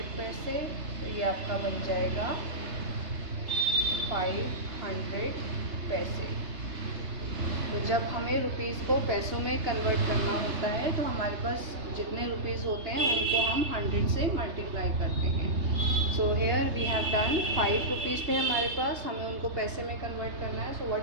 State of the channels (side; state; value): left; late; 3.3 ms